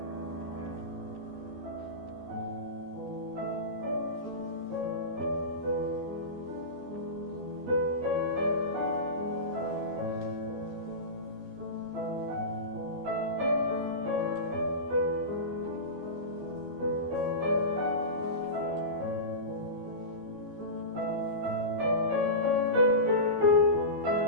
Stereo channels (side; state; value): left; late; 13 ms